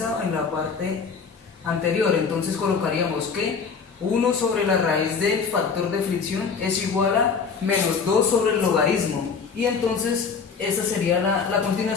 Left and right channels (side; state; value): right; quieter; 5.6 dB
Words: en la parte anterior. Entonces colocaríamos que 1 sobre la raíz del factor de fricción es igual a menos 2 sobre el logaritmo, y entonces esta sería la